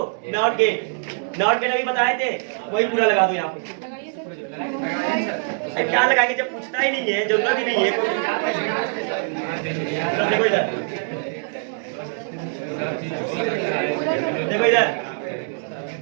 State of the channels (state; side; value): silent; left; digital silence